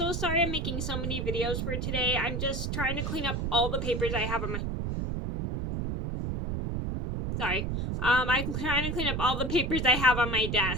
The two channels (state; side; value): noise; right; rumble, 2 dB below the sound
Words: sorry I'm making so many videos for today. I'm just trying to clean up all the papers I have on my... I'm trying to clean up all the papers I have on my